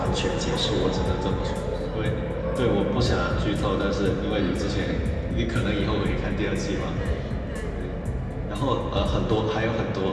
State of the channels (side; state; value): both; identical; correlation 1.00